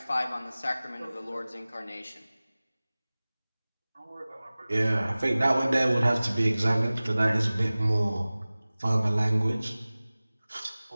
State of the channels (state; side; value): inverted; both; correlation -0.98